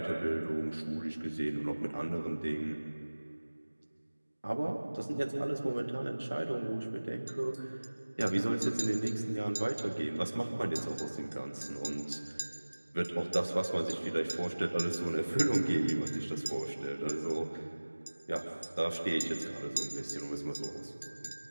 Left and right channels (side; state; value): both; inverted; correlation -1.00